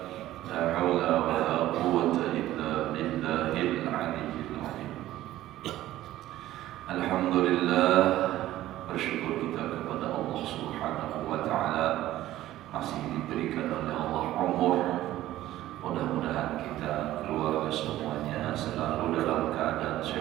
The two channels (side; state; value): left; quieter; 14.6 dB